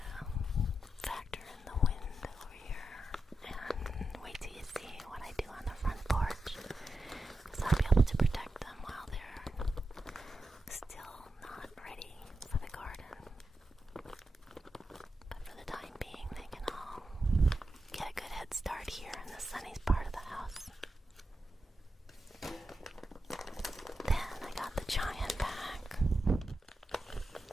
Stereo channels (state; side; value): normal; both; correlation 0.89